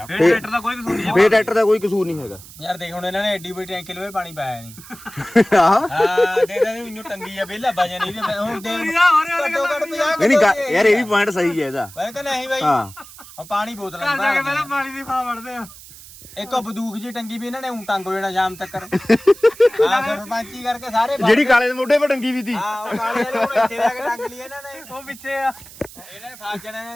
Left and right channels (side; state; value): right; noise; hiss, 18 dB below the sound